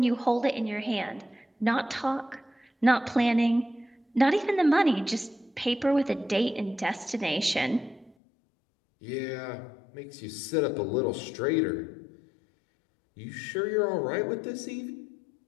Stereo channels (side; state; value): right; drops out; at 8.2 s